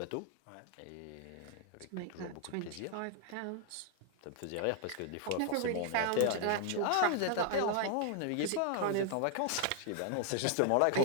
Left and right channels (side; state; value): both; different; correlation 0.00